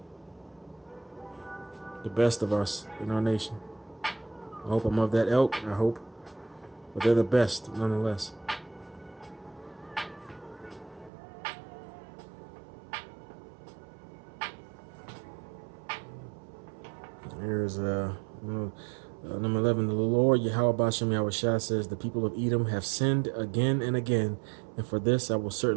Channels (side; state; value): left; drops out; at 11.1 s